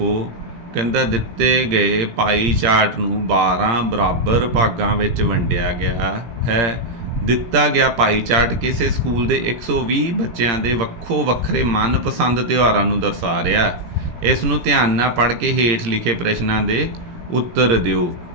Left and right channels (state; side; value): late; left; 17 ms